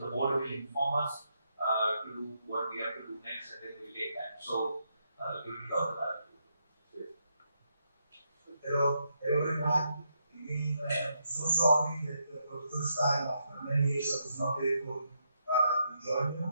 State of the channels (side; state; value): both; inverted; correlation -0.79